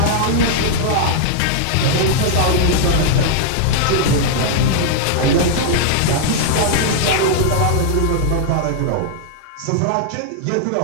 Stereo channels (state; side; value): different; both; correlation -0.01